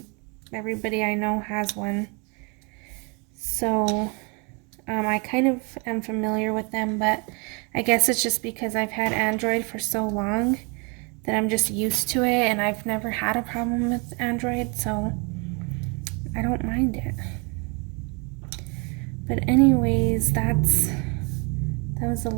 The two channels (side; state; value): left; quieter; 32.7 dB